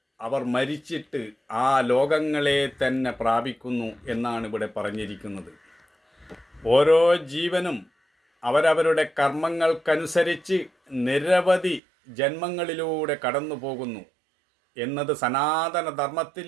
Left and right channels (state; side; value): drops out; left; at 11.8 s